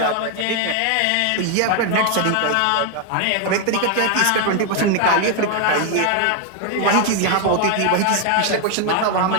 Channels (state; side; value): different; both; correlation 0.01